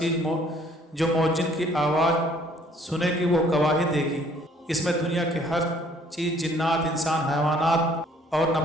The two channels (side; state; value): both; normal; correlation 0.60